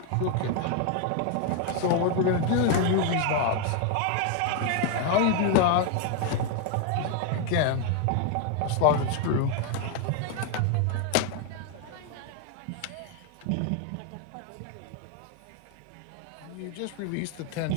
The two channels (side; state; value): both; different; correlation 0.00